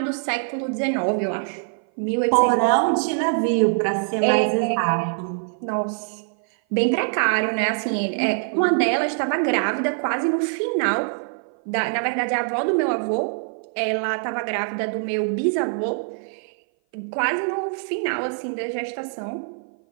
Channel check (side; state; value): left; silent; 57 dB below the other